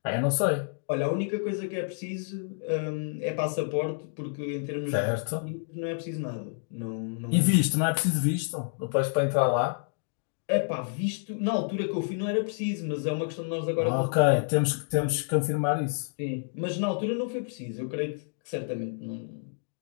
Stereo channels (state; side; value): silent; right; digital silence